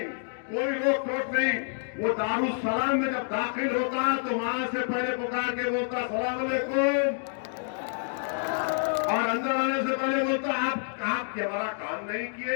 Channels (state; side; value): silent; right; digital silence